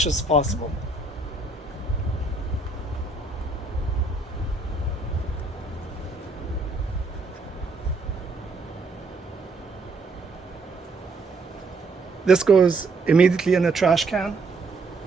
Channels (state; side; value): quieter; left; 3.5 dB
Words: as possible. This goes immediately in the trash can.